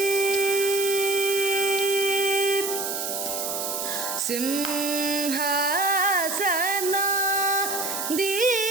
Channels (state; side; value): noise; right; hiss, 3 dB below the sound